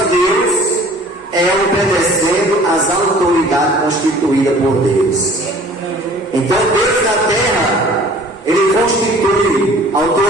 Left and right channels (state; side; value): normal; both; correlation 0.50